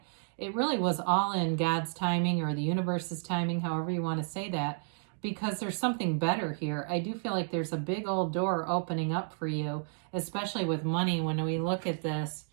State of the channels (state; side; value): silent; left; 57 dB below the other